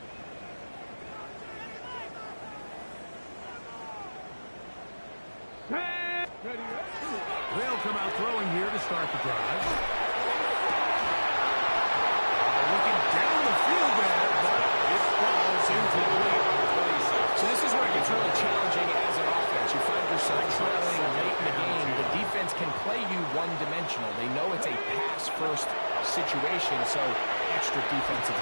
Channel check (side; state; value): both; inverted; correlation -1.00